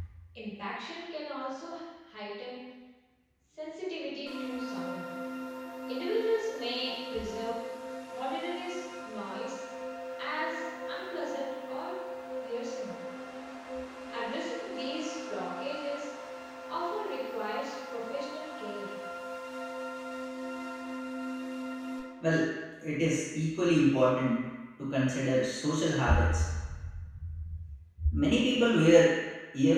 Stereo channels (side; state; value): both; identical; correlation 1.00